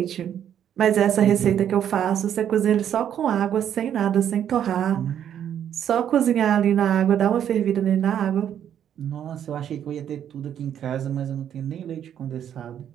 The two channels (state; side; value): quieter; left; 9.6 dB